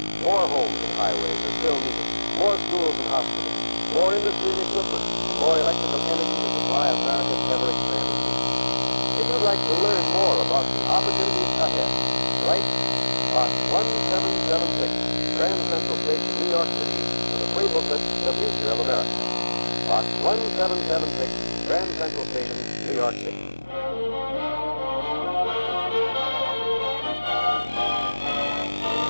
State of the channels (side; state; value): both; inverted; correlation -1.00